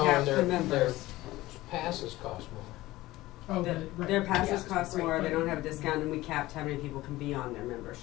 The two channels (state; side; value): quieter; right; 17.7 dB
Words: cap and the members. their passes cost more. Oh, Their passes yeah. cost Right, more, they but- don't have a discount, and we capped how many people can be on their